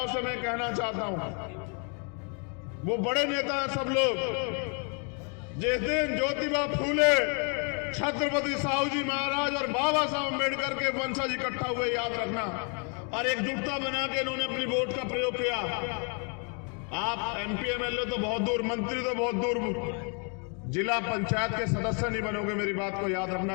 से मैं कहना चाहता हूं, वो बड़े नेता हैं सब लोग। जिस दिन ज्योतिबा फूले, छत्रपति साहू जी महाराज और बाबा साहब अम्बेडकर के वंशज इकट्ठा हुए, याद रखना, और एकजुटता बना के इन्होंने अपनी वोट का प्रयोग किया। आप एमपी एमएलए तो बहुत दूर, मंत्री तो बहुत दूर, जिला पंचायत के सदस्य नहीं बनोगे। मेरी बात को याद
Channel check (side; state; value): right; quieter; 38.5 dB